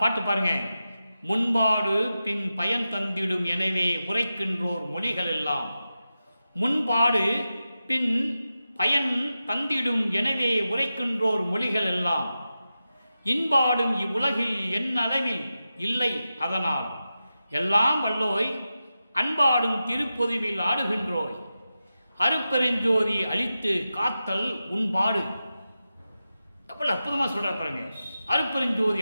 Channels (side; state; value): both; inverted; correlation -0.92